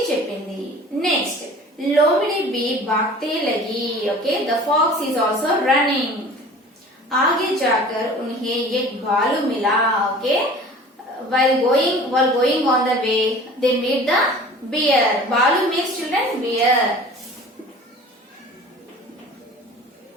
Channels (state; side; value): normal; both; correlation 0.43